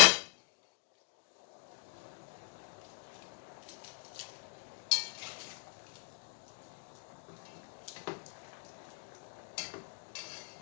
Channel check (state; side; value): silent; right; 52 dB below the other